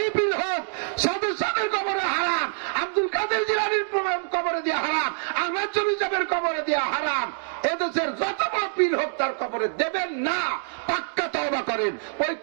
হোক, সদস্যের কবরে হারাম, আব্দুল কাদের জিলানীর কবরে দিয়া হারাম, আহমদ জমি সাহেবের কবরে দিয়া হারাম। এদেশের যত বড় পীর হোক তার কবরে দেবেন না, পাক্কা তওবা করেন। ওই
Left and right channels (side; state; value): left; silent; digital silence